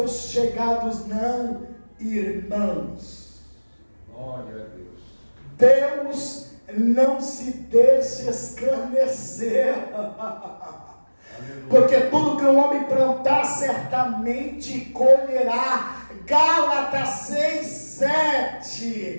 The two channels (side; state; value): both; inverted; correlation -1.00